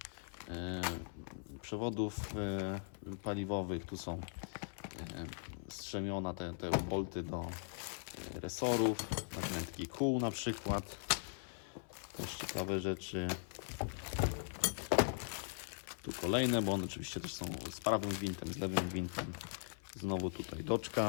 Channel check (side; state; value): right; silent; 51 dB below the other